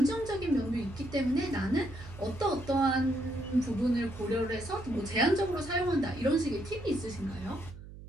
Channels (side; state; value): right; noise; hum, 15 dB below the sound